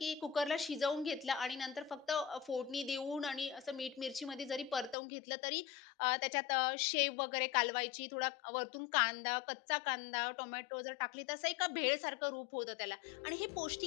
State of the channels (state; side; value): drops out; right; at 5.0 s